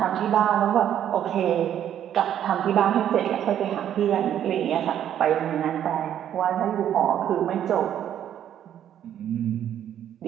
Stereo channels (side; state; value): left; quieter; 10.3 dB